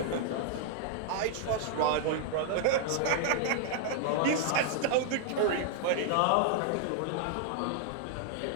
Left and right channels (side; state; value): both; different; correlation -0.01